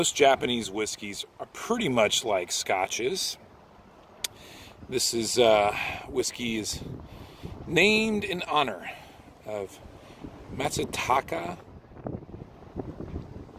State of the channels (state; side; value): identical; both; correlation 1.00